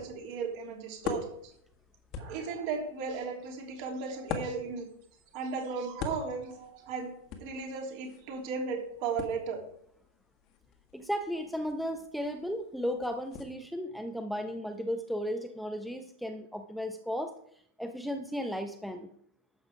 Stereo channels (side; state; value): both; normal; correlation 0.46